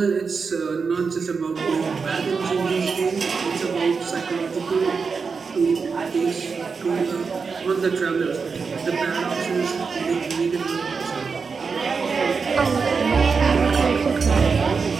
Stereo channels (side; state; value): left; quieter; 5.1 dB